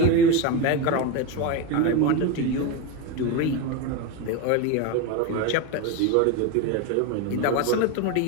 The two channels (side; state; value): both; different; correlation 0.04